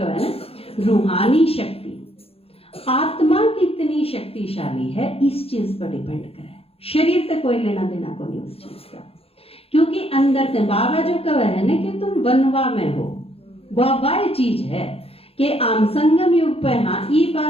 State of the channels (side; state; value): right; late; 0.28 ms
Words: है ना, रूहानी शक्ति, आत्मा कितनी शक्तिशाली है, इस चीज पर डिपेंड करे। शरीर से कोई लेना देना को नहीं उस चीज का, क्योंकि अंदर से बाबा जो कहा है ना कि तुम बनवा में हो, वह चीज है कि आम संगम युग पे, हाँ ई